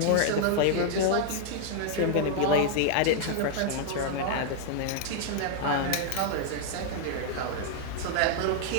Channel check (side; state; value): both; different; correlation -0.01